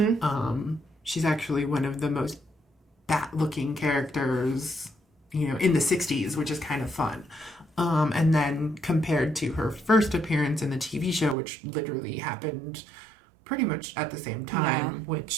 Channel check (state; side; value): drops out; left; at 11.4 s